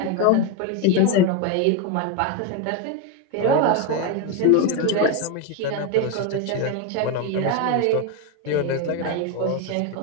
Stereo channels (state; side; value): different; both; correlation 0.02